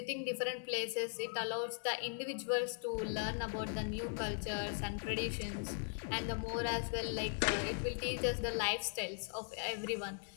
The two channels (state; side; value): silent; right; 52 dB below the other